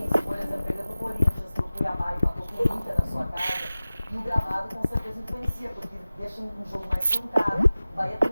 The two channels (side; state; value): both; inverted; correlation -0.97